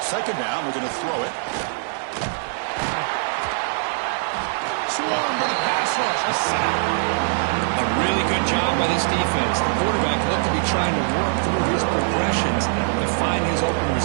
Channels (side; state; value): left; silent; 64 dB below the other